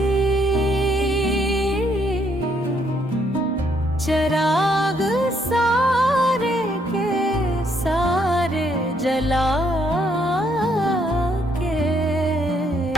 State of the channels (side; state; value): both; normal; correlation 0.71